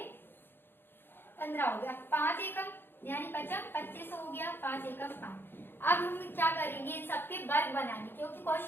15 हो गया, 5 एकम यानी 55, 25 हो गया, 5 एकम 5। अब हम क्या करेंगे, इन सबके वर्ग बनाने, क्योंकि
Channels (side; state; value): right; late; 0.10 ms